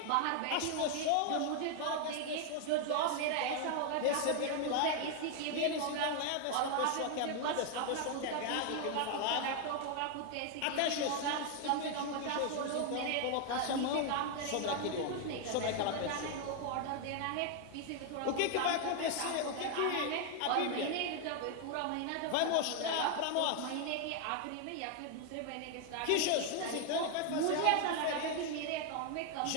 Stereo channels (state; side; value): different; both; correlation 0.00